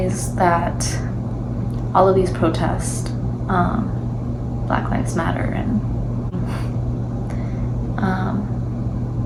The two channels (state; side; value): identical; both; correlation 1.00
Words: that all of these protests, Black Lives Matter, and